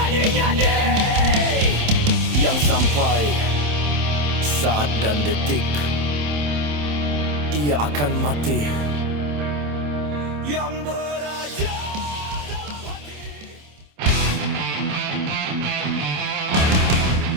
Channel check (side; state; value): left; late; 27 ms